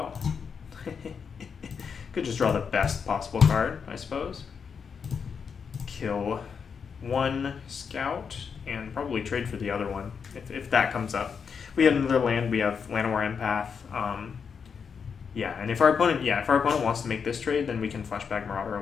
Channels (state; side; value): quieter; right; 6.3 dB